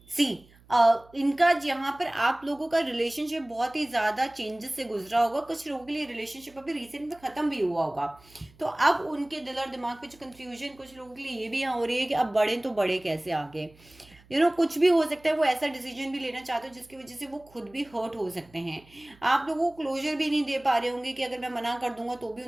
सी, इनका यहाँ पर आप लोगों का रिलेशनशिप बहुत ही ज़्यादा चेंजेस से गुजरा होगा, कुछ लोगों के लिए रिलेशनशिप अभी रिसेंट में ख़त्म भी हुआ होगा, तो अब उनके दिल और दिमाग पे जो कंफ्यूजन कुछ लोगों के लिए ये भी यहाँ हो रही है कि अब बढ़े तो बढ़े कैसे आगे। कुछ भी हो सकता है, वो ऐसा डिसीजन भी लेना चाहते हो जिसकी वजह से वो खुद भी हर्ट हो सकते हैं। आप लोगों को क्लोजर भी नहीं दे पा रहे होंगे कि अगर मैं मना कर दूंगा तो भी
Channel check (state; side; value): noise; right; hum, 27 dB below the sound